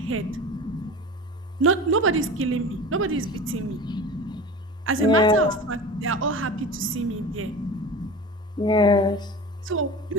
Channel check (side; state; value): both; normal; correlation 0.34